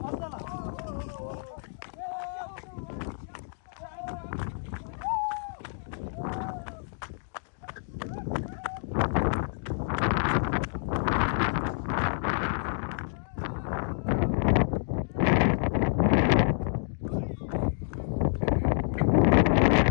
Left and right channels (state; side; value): silent; right; digital silence